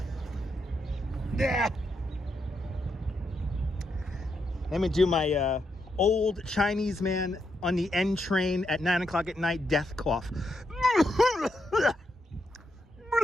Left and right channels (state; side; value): normal; both; correlation 0.81